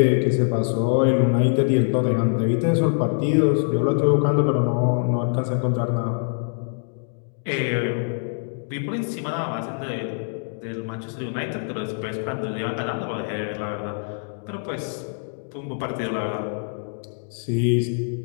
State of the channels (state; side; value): silent; right; 63 dB below the other